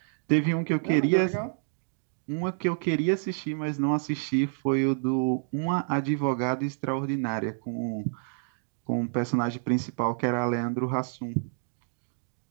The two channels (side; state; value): left; silent; digital silence